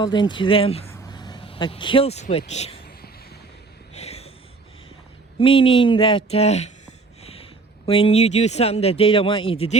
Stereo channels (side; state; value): left; quieter; 3.9 dB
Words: into them a kill switch. Meaning that when you do something that they don't want you to